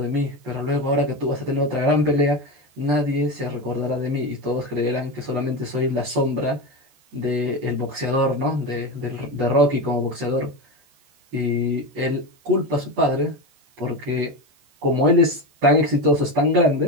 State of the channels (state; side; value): late; left; 14 ms